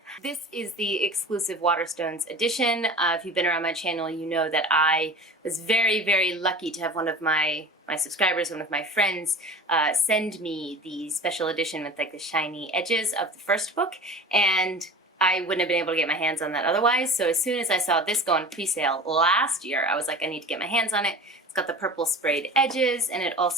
This is the exclusive Waterstones edition. If you've been around my channel, you know that I was very, very lucky to have one of my subscribers, one of my friends, send me the special edition with like the shiny edges of the first book, and I wouldn't have been able to get my hands on that otherwise. So as soon as I saw this go on pre-sale last year, I was like, I need to get my hands on it. It's got the purple sprayed edges, and it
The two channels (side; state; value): both; normal; correlation 0.37